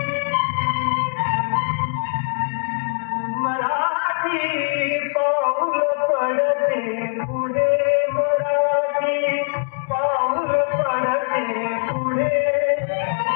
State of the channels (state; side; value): silent; right; 64 dB below the other